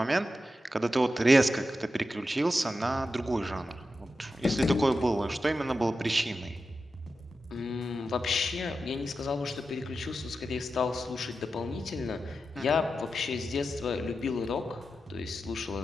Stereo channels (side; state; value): both; normal; correlation 0.90